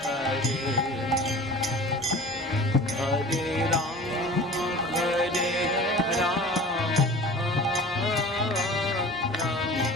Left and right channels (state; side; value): normal; both; correlation 0.41